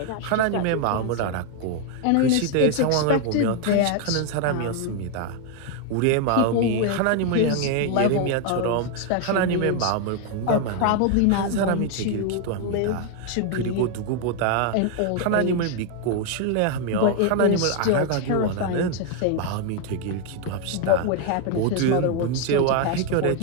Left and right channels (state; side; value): different; both; correlation 0.01